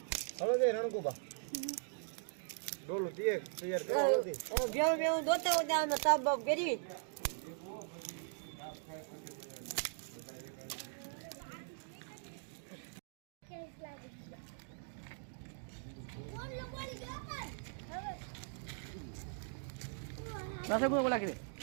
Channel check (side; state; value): left; silent; digital silence